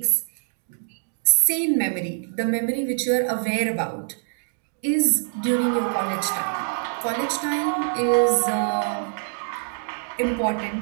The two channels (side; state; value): left; silent; digital silence